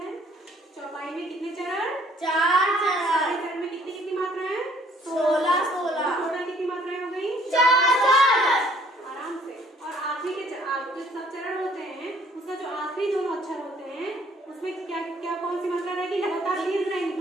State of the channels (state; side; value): normal; both; correlation 0.60